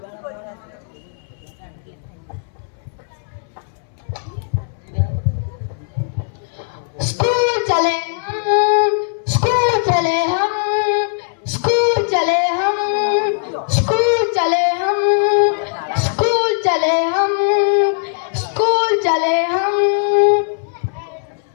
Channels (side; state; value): right; silent; 66 dB below the other